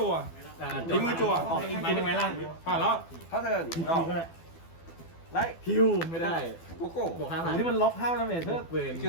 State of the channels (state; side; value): late; right; 12 ms